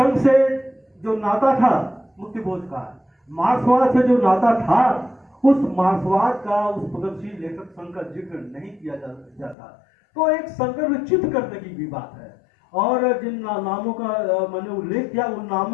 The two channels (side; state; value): right; drops out; at 9.6 s